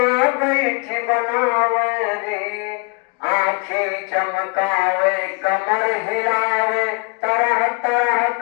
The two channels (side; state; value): right; quieter; 30.7 dB